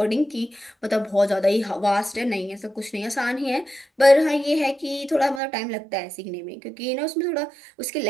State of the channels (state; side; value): drops out; left; at 5.4 s